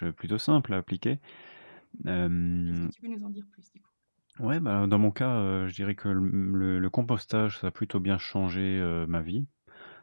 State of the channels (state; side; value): inverted; both; correlation -1.00